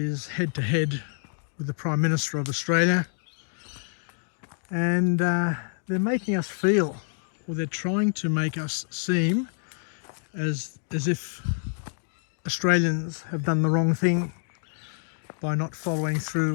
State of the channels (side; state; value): right; silent; 60 dB below the other